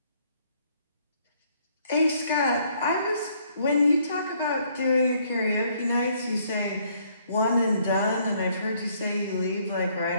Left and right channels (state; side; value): inverted; both; correlation -0.66